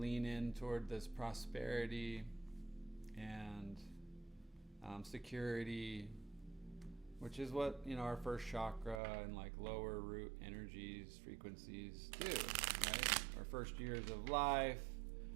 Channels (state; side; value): drops out; left; at 9.0 s